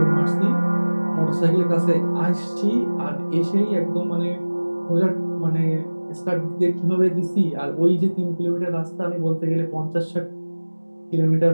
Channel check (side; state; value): both; inverted; correlation -1.00